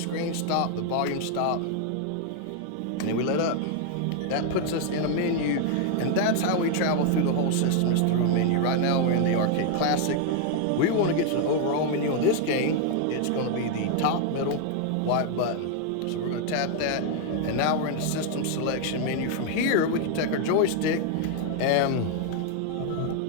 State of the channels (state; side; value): different; both; correlation 0.00